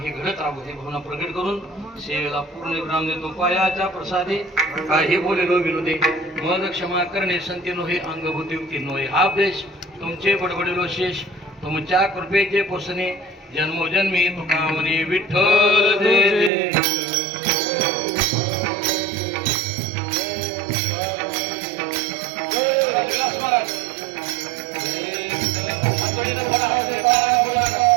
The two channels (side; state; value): left; drops out; at 16.5 s